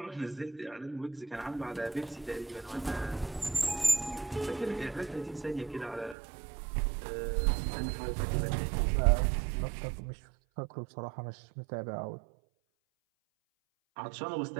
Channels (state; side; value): drops out; left; at 6.2 s